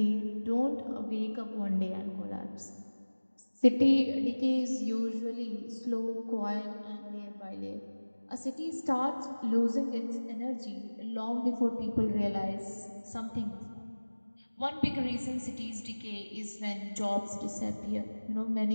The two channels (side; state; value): both; inverted; correlation -1.00